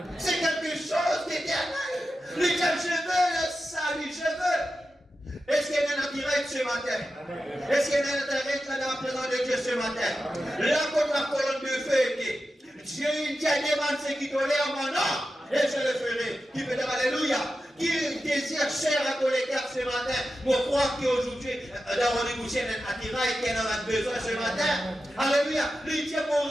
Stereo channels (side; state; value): both; normal; correlation 0.91